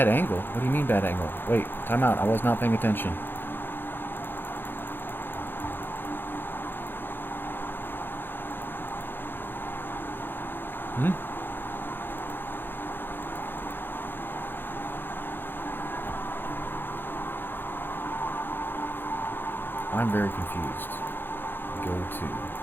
angle? What do you mean bad angle? Wait, time out. I was not paying attention. I'm very confused. Go to,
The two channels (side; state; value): right; late; 0.099 ms